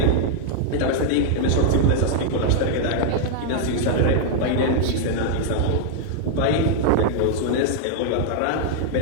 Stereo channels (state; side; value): different; both; correlation -0.01